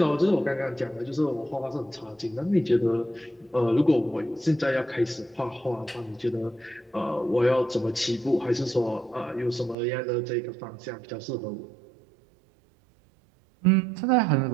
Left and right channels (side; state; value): left; drops out; at 9.8 s